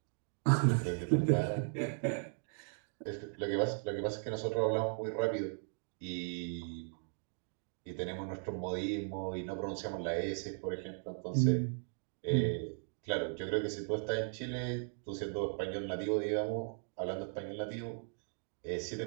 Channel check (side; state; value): left; silent; 53 dB below the other